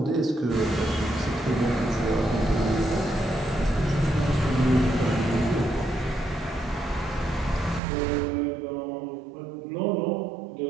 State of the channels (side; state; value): left; drops out; at 7.8 s